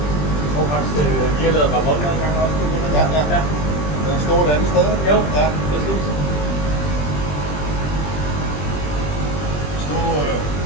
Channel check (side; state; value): right; late; 20 ms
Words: Og faktisk, vi har lavet revolver en gang også. Ja, ja. Ja. Den står et andet sted. Jo, Ja. præcis. Stod